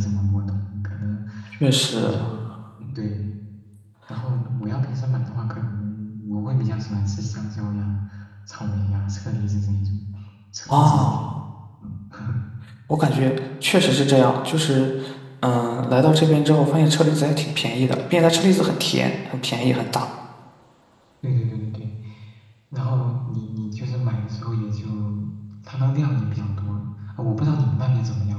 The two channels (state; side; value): identical; both; correlation 1.00